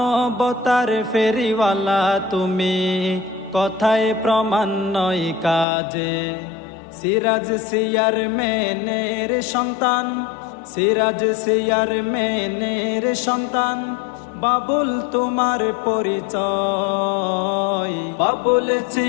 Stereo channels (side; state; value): right; drops out; at 5.7 s